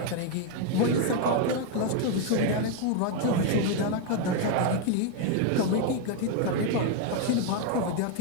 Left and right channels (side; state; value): both; different; correlation 0.01